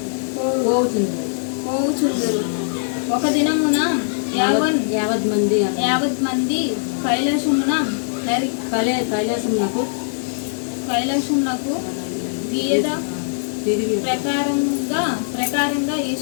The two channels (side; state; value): right; silent; digital silence